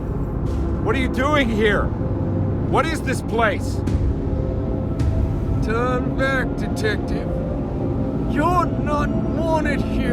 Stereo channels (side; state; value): both; identical; correlation 1.00